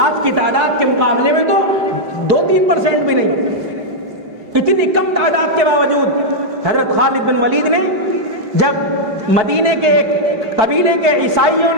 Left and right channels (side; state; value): left; late; 4.7 ms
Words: کی تعداد کے مقابلے میں تو 3% بھی نہیں. اتنی کم تعداد کے باوجود حضرت خالد بن ولید نے جب مدینے کے ایک قبیلے کے عیسائیوں